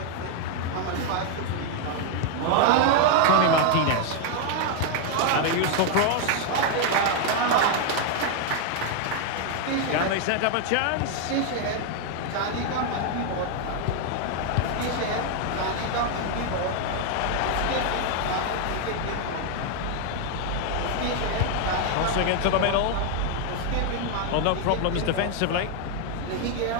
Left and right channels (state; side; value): different; both; correlation 0.00